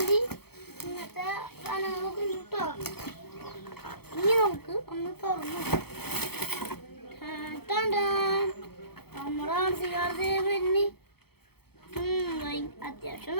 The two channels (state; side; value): late; right; 0.96 ms